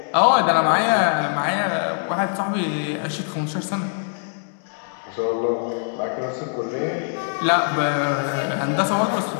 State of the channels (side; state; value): right; silent; 62 dB below the other